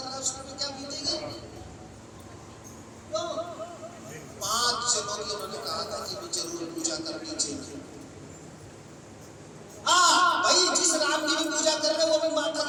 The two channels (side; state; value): both; identical; correlation 1.00